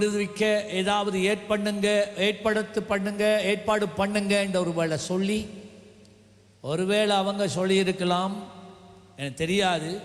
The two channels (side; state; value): both; identical; correlation 1.00